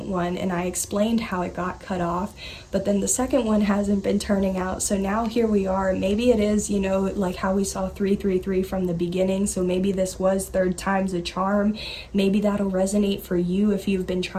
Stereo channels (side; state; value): both; identical; correlation 1.00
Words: one, and I explained how it got cut off, but then the second one hasn't been turning out. So now here we are. Maybe it is, you know, like how we saw 333 from the beginning. So maybe this was third time's a charm. Maybe that'll resonate for you if you've been